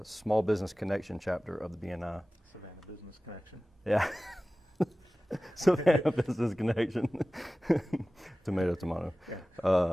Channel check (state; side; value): normal; both; correlation 0.97